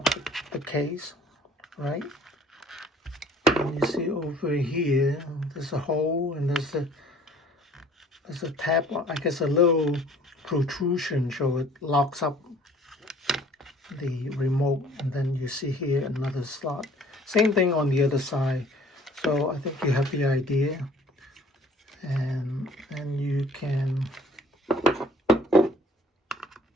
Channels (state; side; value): normal; both; correlation 0.54